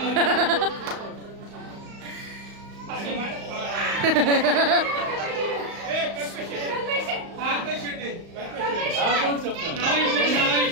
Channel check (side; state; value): left; late; 35 ms